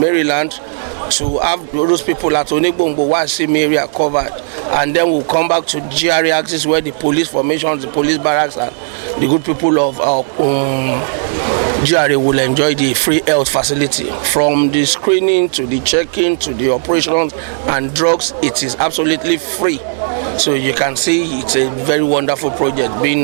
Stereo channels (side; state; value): left; silent; digital silence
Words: to have those people at Onigbongbo Wasim area covered. And then we'll come back to GRA axis, where the police formations, the police barracks, and the good people of GRA will enjoy the free health facility. From the screening to the checking to the operations and drugs, it is absolutely free. So you can see it's a very wonderful project being